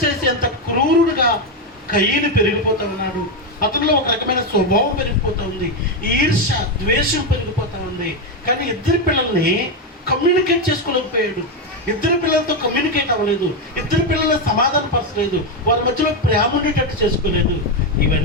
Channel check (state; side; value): normal; both; correlation 0.07